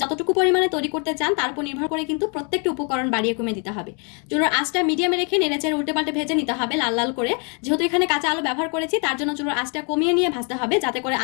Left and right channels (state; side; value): quieter; right; 37.2 dB